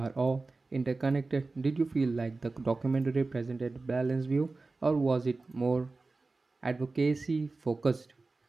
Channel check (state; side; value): quieter; left; 3.6 dB